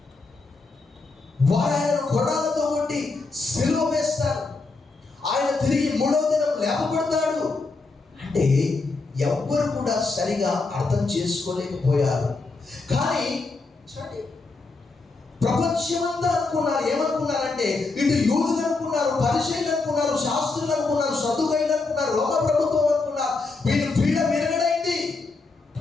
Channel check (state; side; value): quieter; right; 3.8 dB